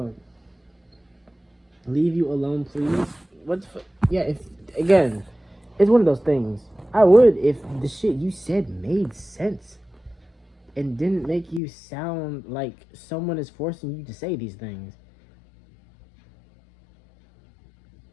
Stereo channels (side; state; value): right; drops out; at 11.6 s